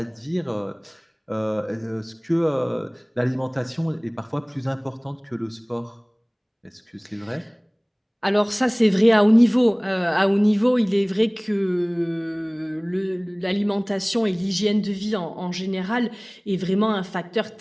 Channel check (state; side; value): identical; both; correlation 1.00